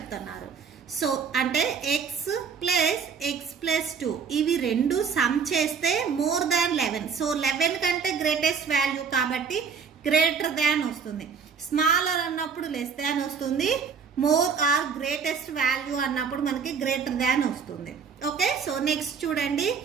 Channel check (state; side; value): quieter; left; 6.1 dB